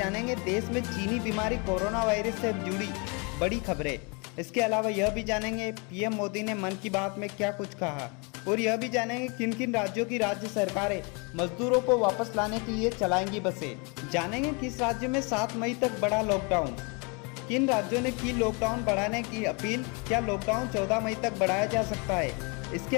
देश में चीनी बीमारी कोरोना वायरस से जुड़ी बड़ी खबरें। इसके अलावा यह भी जानेंगे पीएम मोदी ने मन की बात में क्या कुछ कहा, और यह भी जानेंगे किन किन राज्यों की राज्य सरकारें मजदूरों को वापस लाने के लिए चलाएंगी बसें। जानेंगे किस राज्य में 7 मई तक बढ़ा लॉकडाउन, किन राज्यों ने की लॉकडाउन बढ़ाने की अपील, क्या लॉकडाउन 14 मई तक बढ़ाया जा सकता है। इसके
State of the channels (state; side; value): quieter; right; 32.1 dB